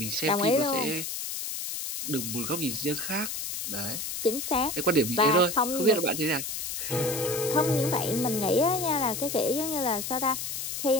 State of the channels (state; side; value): noise; left; hiss, 4 dB below the sound